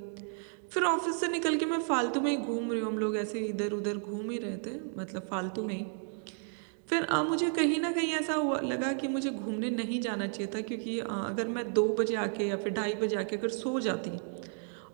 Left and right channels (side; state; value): left; silent; 56 dB below the other